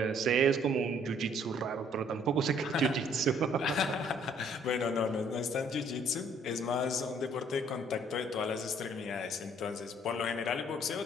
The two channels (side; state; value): both; normal; correlation 0.61